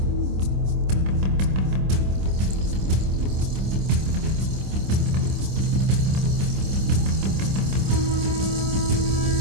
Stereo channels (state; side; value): late; left; 26 ms